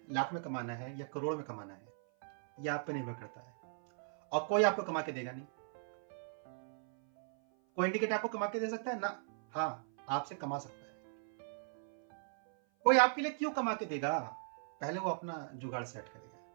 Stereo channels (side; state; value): left; silent; 52 dB below the other